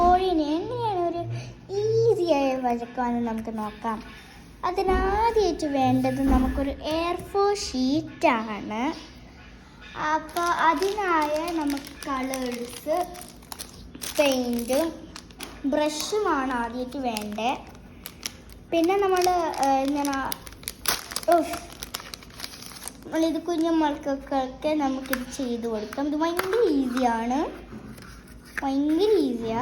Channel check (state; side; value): identical; both; correlation 1.00